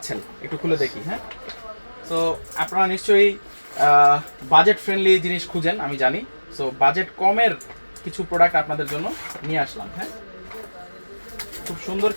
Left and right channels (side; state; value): both; inverted; correlation -1.00